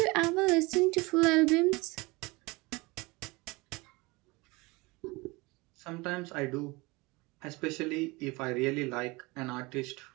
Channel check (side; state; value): left; quieter; 24.2 dB